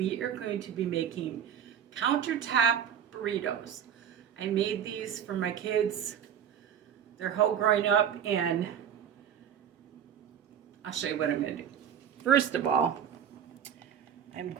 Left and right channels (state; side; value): quieter; left; 8.8 dB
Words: are going to be making countertop burritos. I made these for my kids their whole growing up, and I'll show you what I'm going to do. First of all, I'm